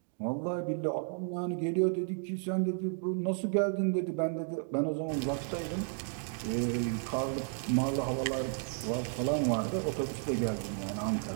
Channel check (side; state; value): left; silent; 56 dB below the other